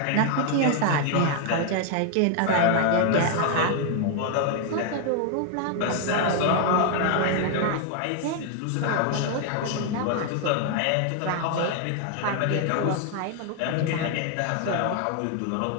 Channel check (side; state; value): both; different; correlation 0.00